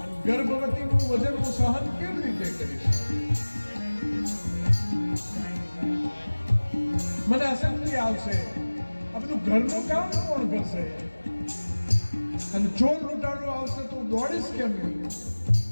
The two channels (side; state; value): both; inverted; correlation -1.00